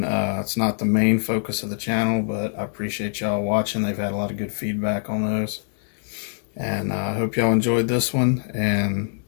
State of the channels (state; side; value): silent; right; digital silence